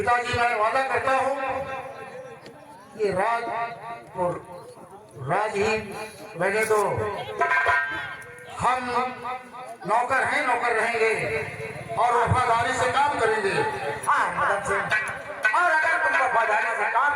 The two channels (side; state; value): both; identical; correlation 1.00